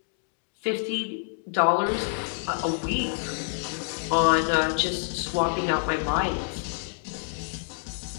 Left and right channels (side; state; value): right; silent; digital silence